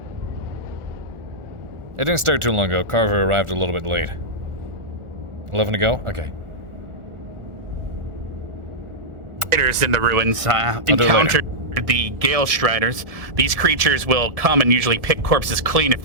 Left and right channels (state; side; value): late; left; 1.4 ms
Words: It didn't start too long ago. Carver arrived a little bit late. 11 to go? Okay. Raiders in the ruins encountered the Gale Striders. These creatures will come and usually pick corpses clean if